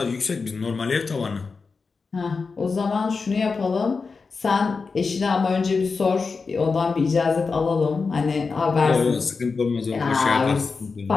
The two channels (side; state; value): right; quieter; 4.6 dB